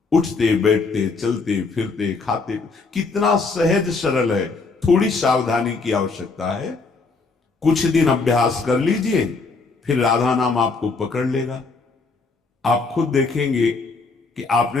उठते बैठते चलते फिरते खाते, कितना सहज सरल है। थोड़ी सावधानी की आवश्यकता है। कुछ दिन अभ्यास कर लीजिए, फिर राधा नाम आपको पकड़ लेगा। आप खुद देखेंगे कि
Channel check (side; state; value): right; quieter; 4.1 dB